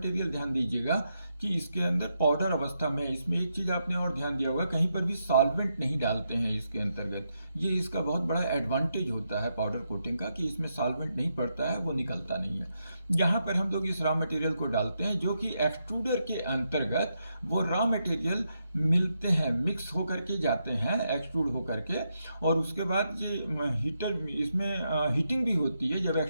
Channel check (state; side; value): inverted; both; correlation -0.82